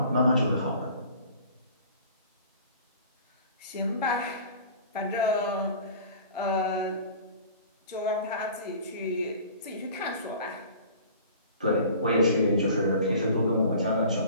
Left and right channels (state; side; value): inverted; both; correlation -0.44